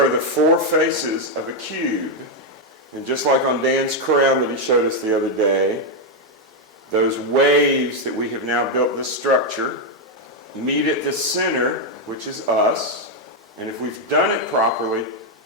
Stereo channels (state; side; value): normal; both; correlation 0.02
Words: the 4 faces of a cube. And just like on Dan's crown that he showed us the other day, those waves that we have now built this structure meet at the center, which is us. And if we've done it properly,